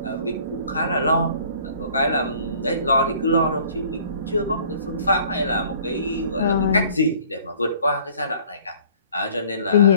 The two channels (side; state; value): both; inverted; correlation -0.54